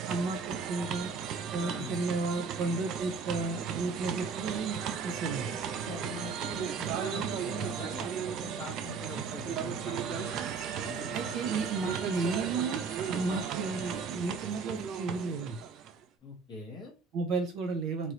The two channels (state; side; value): quieter; left; 4.8 dB